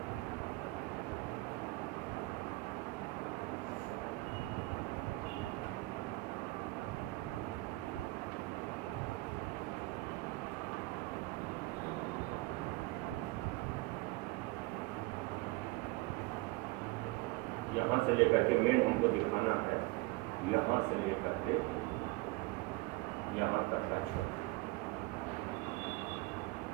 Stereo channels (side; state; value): left; quieter; 22.2 dB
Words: यहां से लेकर के मेन हमको दिखाना है, यहां से लेकर के यहां तक का क्षेत्र,